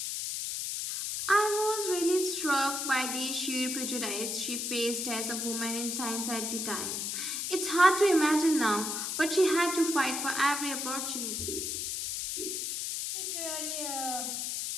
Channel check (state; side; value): noise; left; hiss, 2 dB below the sound